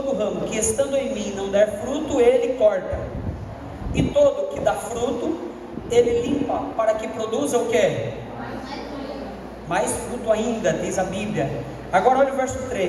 estando em mim não der fruto, ele corta, e todo que dá fruto, ele limpa, para que produza o que? Mais fruto ainda, diz a Bíblia. Agora olha o verso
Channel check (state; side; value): identical; both; correlation 1.00